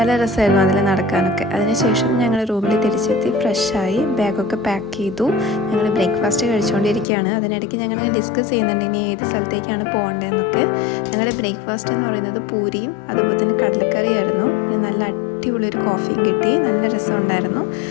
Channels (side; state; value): right; drops out; at 7.1 s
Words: രസമായിരുന്നു അതിൽ നടക്കാനൊക്കെ. അതിനുശേഷം ഞങ്ങൾ റൂമിൽ തിരിച്ചെത്തി ഫ്രഷായി ബാഗൊക്കെ പാക്ക് ചെയ്തു. ഞങ്ങൾ ബ്രേക്ക്ഫാസ്റ്റ് കഴിച്ചുകൊണ്ടിരിക്കുകയാണ്. അതിനിടയ്ക്ക് ഞങ്ങൾ ഡിസ്കസ് ചെയ്യുന്നുണ്ട് ഇനി ഏത് സ്ഥലത്തേക്കാണ് പോകേണ്ടതെന്നൊക്കെ. ഞങ്ങളുടെ ബ്രേക്ക്ഫാസ്റ്റ് എന്ന് പറയുന്നത് പൂരിയും അതുപോലെ തന്നെ കടലക്കറിയായിരുന്നു. നല്ല അടിപൊളിയൊരു കോഫിയും കിട്ടി. നല്ല രസമുണ്ടായിരുന്നു.